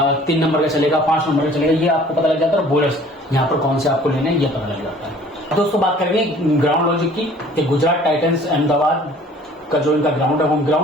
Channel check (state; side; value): normal; both; correlation 0.52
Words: 3 नंबर का चलेगा, 5 नंबर का चलेगा, ये आपको पता लग जाता है। और बॉलर्स यहाँ पर कौन से आपको लेने हैं ये पता लग जाता है। दोस्तों बात करेंगे ग्राउंड लॉजिक की, कि गुजरात टाइटंस अहमदाबाद का जो इनका ग्राउंड है, होम